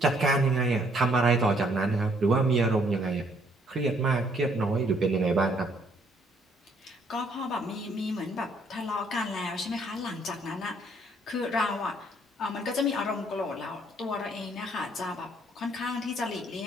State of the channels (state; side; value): normal; both; correlation 0.66